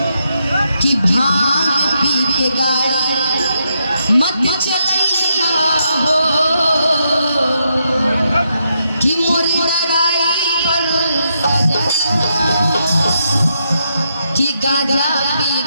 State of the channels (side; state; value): both; inverted; correlation -0.80